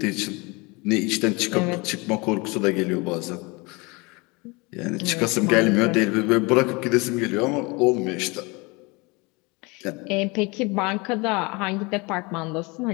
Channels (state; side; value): quieter; right; 26.8 dB